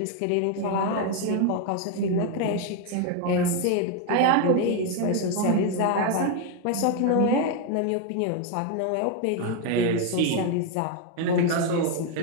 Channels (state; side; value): different; both; correlation 0.01